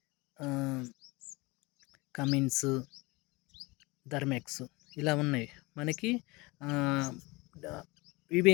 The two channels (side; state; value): right; quieter; 24.0 dB